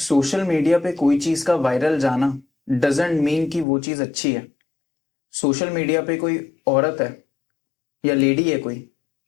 मीडिया पे कोई चीज का वायरल जाना डजंट मीन कि वो चीज अच्छी है। सोशल मीडिया पे कोई औरत है या लेडी है कोई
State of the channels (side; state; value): right; drops out; at 3.7 s